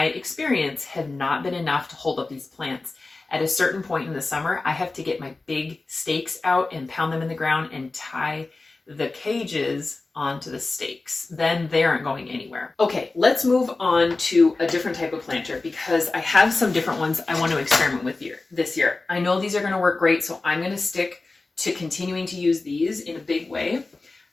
experience, have not been enough to hold up these plants. At a certain point in the summer, I have to get my big stakes out and pound them in the ground and tie the cages onto the stakes. Then they aren't going anywhere. Okay, let's move on to a different type of planter because I have some different ones I want to experiment with this year. I know these are going to work great, so I'm going to stick to continuing to use these in a big way.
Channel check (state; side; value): quieter; right; 3.5 dB